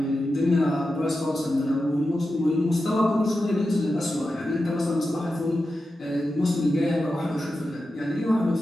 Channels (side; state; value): both; normal; correlation 0.91